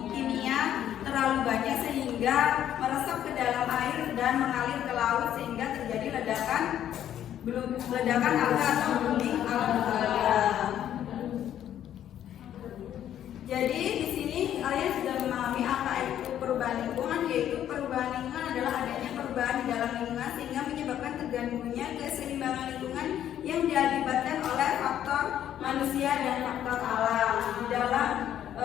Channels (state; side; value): quieter; right; 10.8 dB